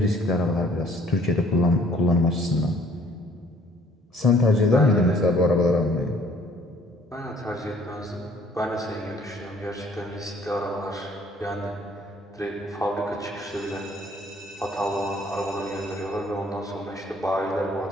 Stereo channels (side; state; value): both; normal; correlation 0.58